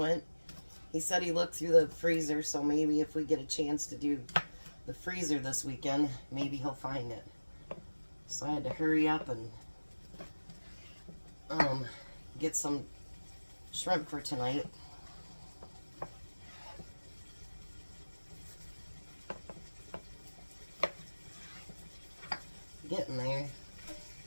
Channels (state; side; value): inverted; both; correlation -1.00